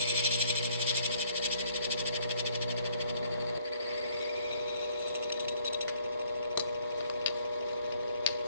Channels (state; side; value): inverted; both; correlation -0.64